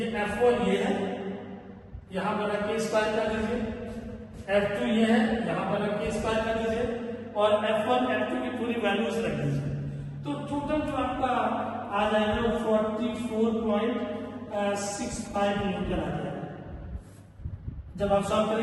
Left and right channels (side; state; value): both; identical; correlation 1.00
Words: F1 ये है, यहां पर रख के स्क्वायर कर दीजिए, F2 ये है, यहां पर रख के स्क्वायर कर दीजिए, और F1 F2 की पूरी वैल्यूज रख दीजिए। तो टोटल जो आपका आ जाएगा 44.65 न्यूटन आ जाएगा। जब आप सॉल्व